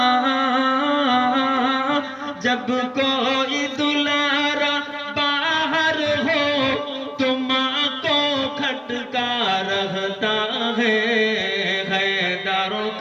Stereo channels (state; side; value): identical; both; correlation 1.00